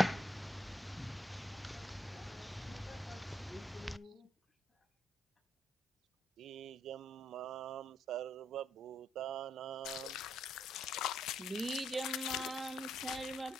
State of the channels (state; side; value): normal; both; correlation 0.75